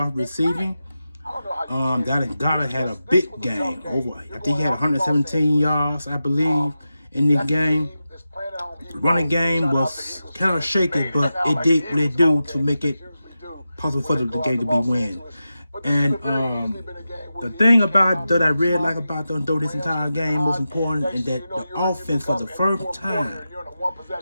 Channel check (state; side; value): inverted; both; correlation -0.92